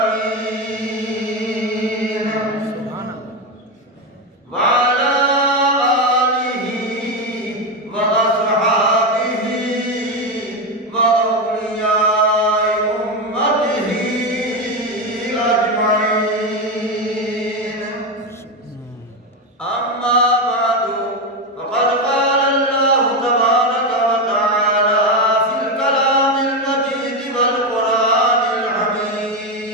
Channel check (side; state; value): both; normal; correlation 0.12